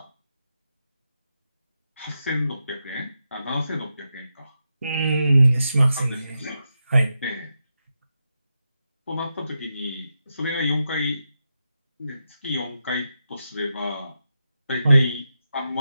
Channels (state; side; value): inverted; both; correlation -0.87